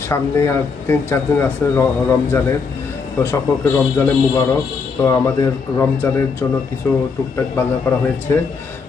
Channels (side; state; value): right; quieter; 5.1 dB